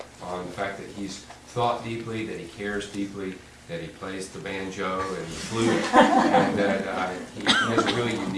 on the fact that he's thought deeply, that he cares deeply, that he plays the banjo and the flute, and that he has a really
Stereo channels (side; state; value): both; identical; correlation 1.00